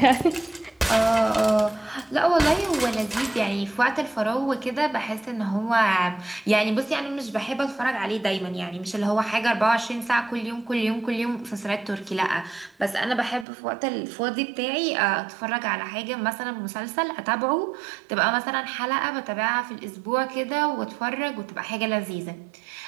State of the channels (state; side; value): drops out; left; at 13.5 s